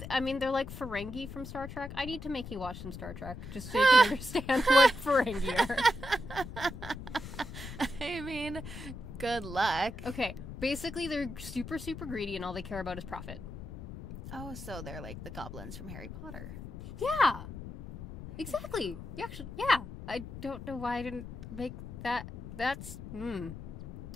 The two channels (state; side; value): noise; left; rumble, 10 dB below the sound